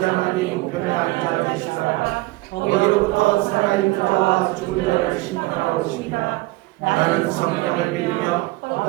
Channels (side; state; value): left; quieter; 20.8 dB